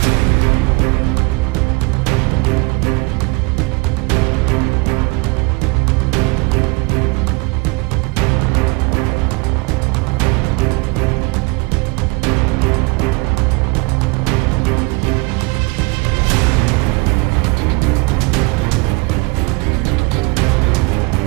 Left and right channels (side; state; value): left; quieter; 27.7 dB